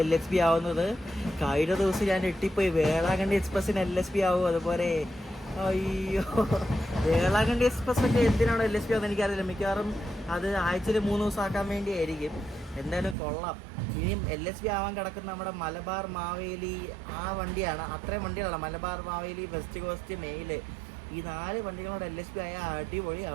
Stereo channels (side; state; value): left; drops out; at 13.2 s